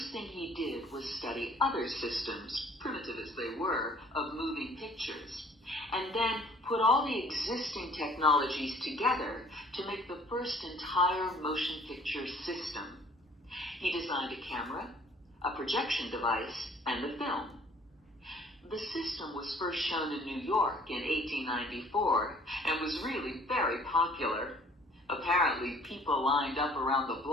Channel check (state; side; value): normal; both; correlation 0.55